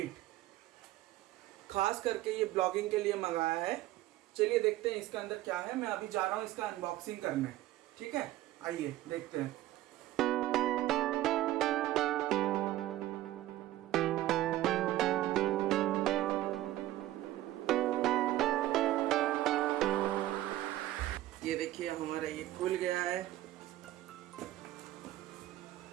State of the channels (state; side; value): quieter; left; 15.3 dB